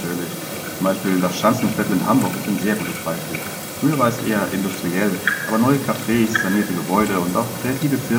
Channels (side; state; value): both; identical; correlation 1.00